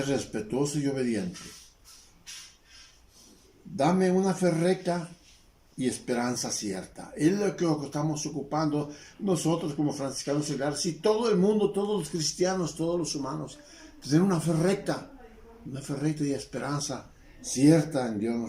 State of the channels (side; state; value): both; identical; correlation 1.00